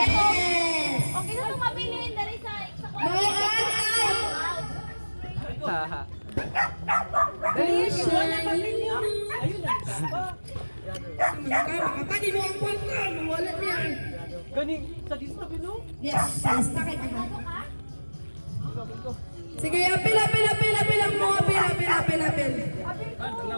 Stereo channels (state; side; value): inverted; both; correlation -1.00